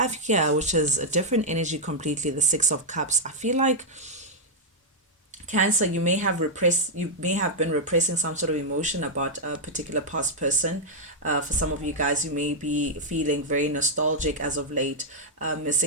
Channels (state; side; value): normal; both; correlation -0.04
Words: here, which is a different energy completely, the Six of Cups. I feel like, Cancer, you may have been repressing some sort of emotion about a particular past person. For some of you guys, you may be feeling very nostalgic as of late,